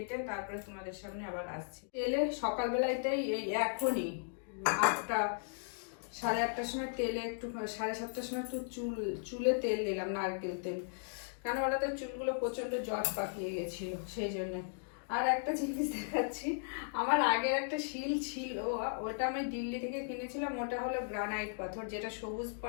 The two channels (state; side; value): silent; right; digital silence